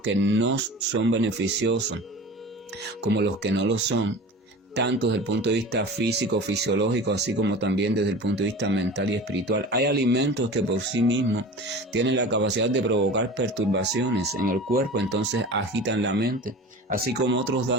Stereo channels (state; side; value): normal; both; correlation 0.36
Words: que no son beneficiosos, como los que no lo son, tanto desde el punto de vista físico, fisiológico, así como también desde el punto de vista mental y espiritual. Hay alimentos que por sí mismos tienen la capacidad de provocar perturbaciones en el cuerpo, entonces agitan la mente, así como otros